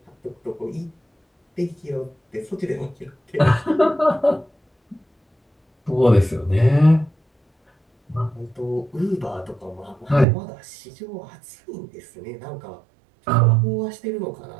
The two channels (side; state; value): left; drops out; at 10.2 s